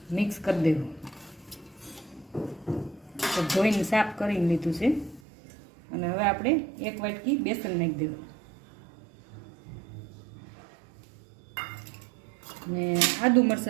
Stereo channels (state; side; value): drops out; left; at 5.2 s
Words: મિક્સ કરી દેવું। ધોઈને સાફ કરીને લીધું છે અને હવે આપણે 1 વાટકી બેસન નાખી દેવું ને આદુ